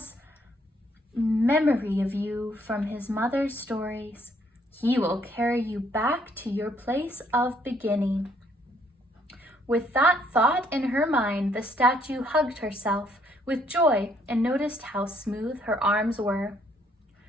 memory of you from his mother's stories. He will carry you back to your place of beginning." With that thought in her mind, the statue hugged herself with joy and noticed how smooth her arms were.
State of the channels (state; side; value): normal; both; correlation 0.68